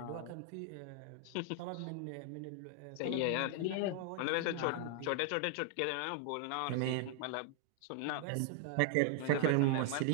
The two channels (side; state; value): both; different; correlation 0.00